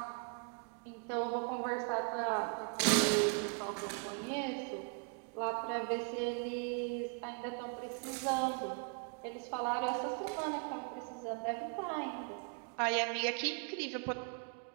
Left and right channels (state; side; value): quieter; left; 39.3 dB